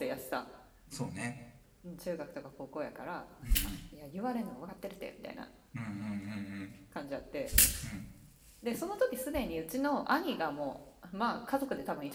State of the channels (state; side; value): identical; both; correlation 1.00